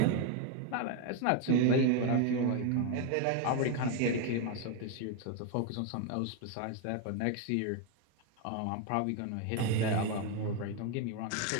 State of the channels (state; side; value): different; both; correlation 0.01